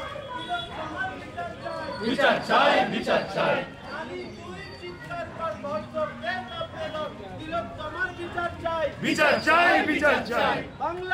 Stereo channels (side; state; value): both; identical; correlation 1.00